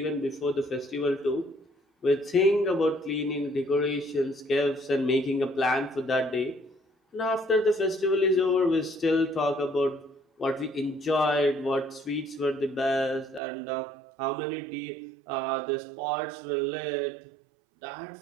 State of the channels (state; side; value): drops out; left; at 13.4 s